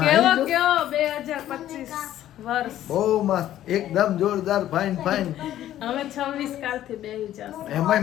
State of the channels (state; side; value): quieter; right; 12.6 dB